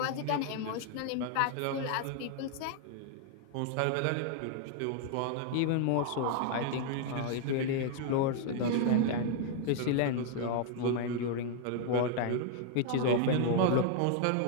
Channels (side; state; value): both; different; correlation 0.00